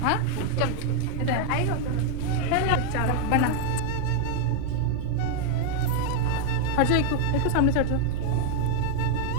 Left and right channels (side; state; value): both; different; correlation 0.00